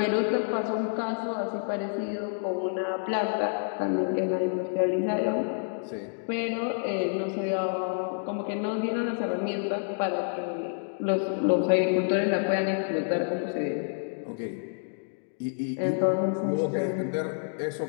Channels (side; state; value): right; silent; digital silence